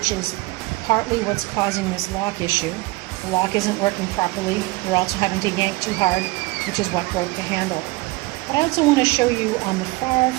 is partly what's causing this lock issue. The lock isn't working properly. You're also having to yank too hard, which is what broke the handle. But I also want to show you on the far,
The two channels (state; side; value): quieter; left; 22.5 dB